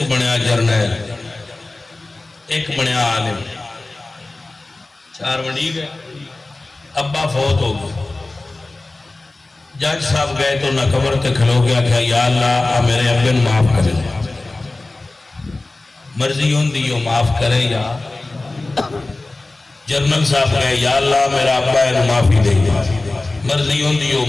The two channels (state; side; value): quieter; right; 3.1 dB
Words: بنیا جرنیل، ایک بنیا عالم، چار بنی گئے۔ ابا فوت ہو گئے، جج صاحب گئے تو نہ قبر تے کھلو گیا کہ یا اللہ میرے ابے نو معاف کرے، مرضی ہوندی ہو معاف کرے، یا جرنل صاحب گئے یا اللہ میرا ابا ہے معافی دے، مرضی ہوندی ہو